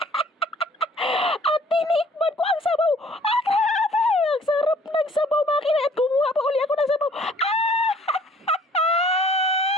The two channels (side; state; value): both; normal; correlation 0.56